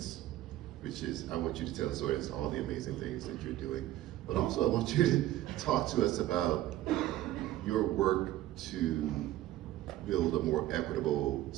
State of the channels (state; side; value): quieter; left; 14.6 dB